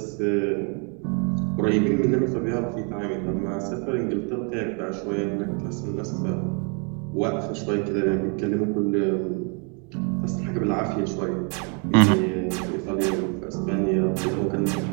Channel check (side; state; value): left; quieter; 37.0 dB